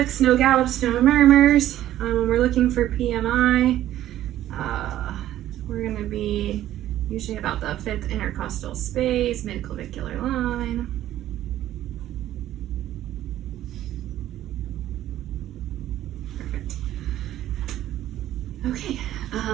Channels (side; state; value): left; quieter; 13.0 dB